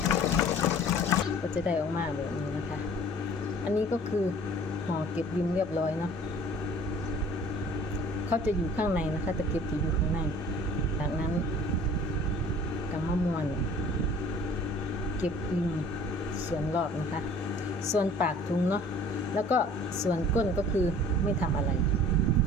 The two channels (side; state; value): both; normal; correlation 0.49